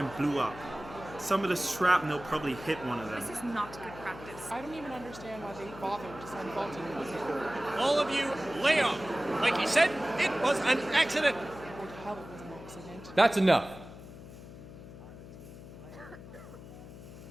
blew up. Some of the shrapnel probably hit one of them. This is not good practice. I don't even understand why they bothered to send faulty equipment. All of you, lay off. Like he said, it was an accident. Or the hell it was an accident. That's enough.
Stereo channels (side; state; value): left; noise; hum, 15 dB below the sound